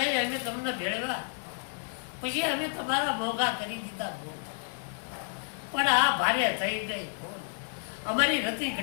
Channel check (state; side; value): silent; right; 57 dB below the other